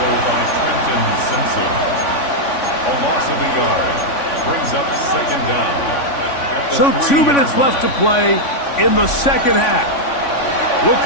by Trenton Simpson. A loss of a yard. Brings up second down. So 2 minutes left to play in the second half. We'll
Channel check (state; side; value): late; right; 3.5 ms